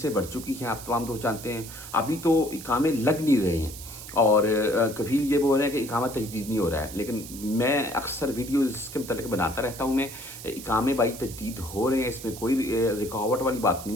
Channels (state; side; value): noise; right; hiss, 13 dB below the sound